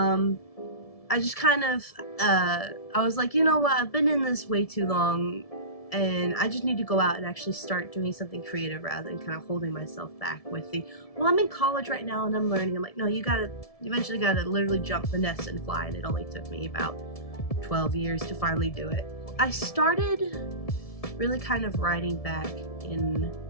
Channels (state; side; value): late; right; 1.7 ms